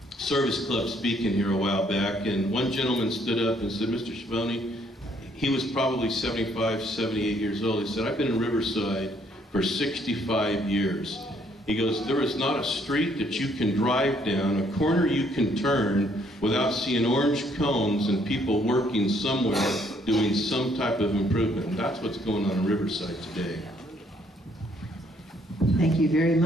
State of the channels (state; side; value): normal; both; correlation 0.67